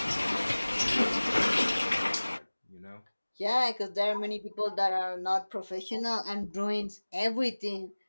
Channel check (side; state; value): both; inverted; correlation -1.00